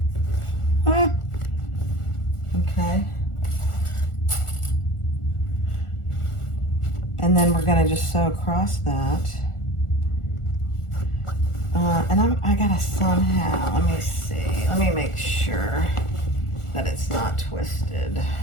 Okay. And then we're gonna just sew across that. And I gotta somehow, let me see, let me make sure that it's not twisted.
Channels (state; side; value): late; right; 1.4 ms